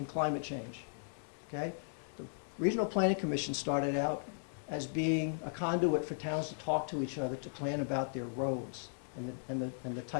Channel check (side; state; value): right; silent; digital silence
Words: climate change. Okay? The Regional Planning Commission started out as being a conduit for towns to talk to each other, to plan about their roads and the